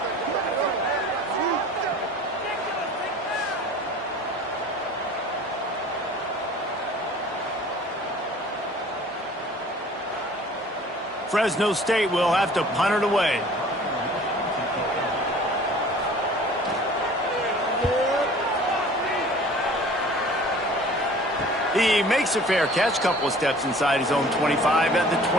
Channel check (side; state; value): both; normal; correlation 0.47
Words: Fresno State will have to punt it away. He makes a fair catch, couple of steps inside his own 25 at the